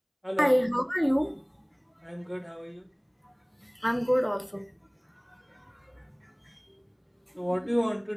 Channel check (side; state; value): both; identical; correlation 1.00